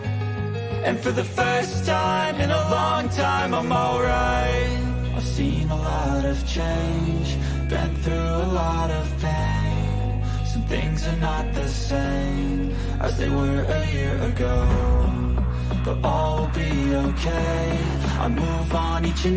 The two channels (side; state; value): both; identical; correlation 1.00